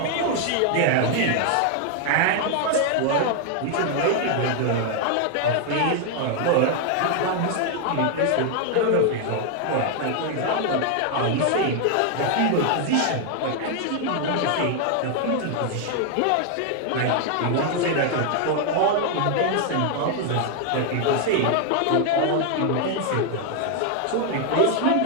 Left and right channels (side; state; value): both; different; correlation 0.00